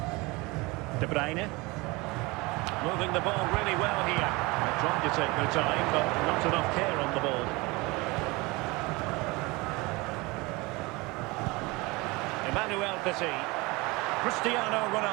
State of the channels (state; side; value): quieter; left; 24.2 dB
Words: De Bruyne. Moving the ball really well here. They're trying to take their time, but not enough care on the ball. Emmanuel Petit. Cristiano